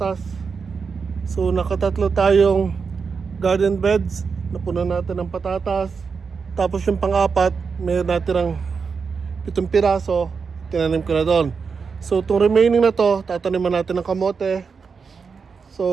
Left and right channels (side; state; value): left; quieter; 5.5 dB